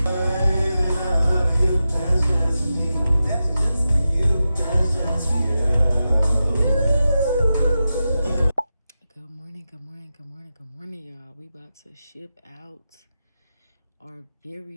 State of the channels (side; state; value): both; inverted; correlation -0.91